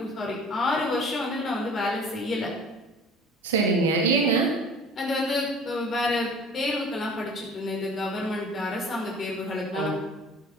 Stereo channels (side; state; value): both; normal; correlation 0.45